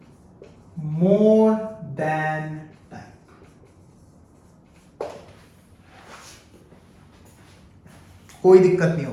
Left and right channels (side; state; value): both; identical; correlation 1.00